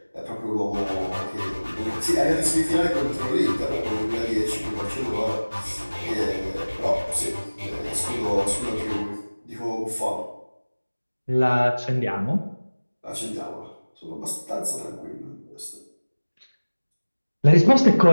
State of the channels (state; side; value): inverted; both; correlation -1.00